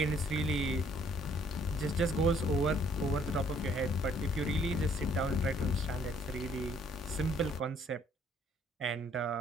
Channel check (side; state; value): both; normal; correlation 0.62